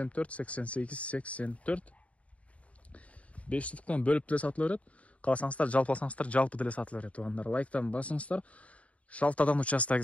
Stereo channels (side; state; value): right; late; 0.066 ms